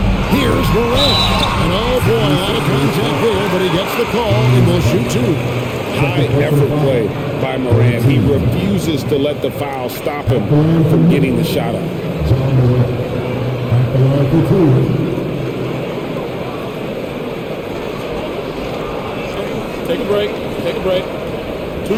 Here's Morant. And oh boy, a lot of contact there, but he gets the call and will shoot two. High effort play by Morant. He refuses to let the foul stop him from getting the shot up. Take a break. Take a break.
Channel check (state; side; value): identical; both; correlation 1.00